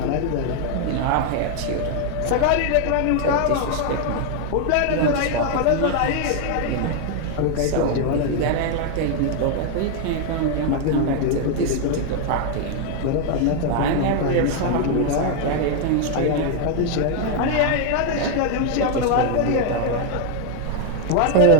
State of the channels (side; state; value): both; different; correlation 0.00